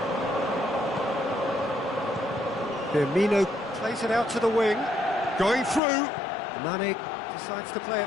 Firmino plays it out to the wing. Going through. Mane decides to play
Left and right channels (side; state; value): right; drops out; at 5.8 s